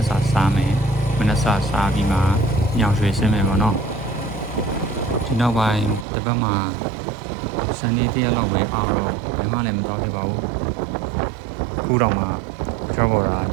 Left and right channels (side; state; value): left; drops out; at 6.1 s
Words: ်စာစားမယ်မနက်စာစားပြီးမှညောင်ရွှေဆင်းမယ်ပေါ့နော်ဒီနောက်ပိုင်းတစ်ပတ်မှာစနေတရက်လောက်ပဲအားတော့ဘယ်မှလည်းမတော်ဖြစ်ပါဘူးခုတော့မှကျော်ပေါ်တာ